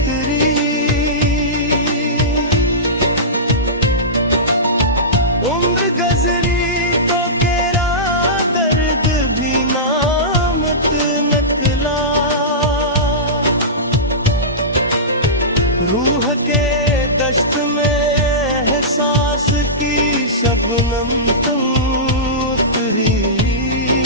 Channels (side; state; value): both; normal; correlation -0.19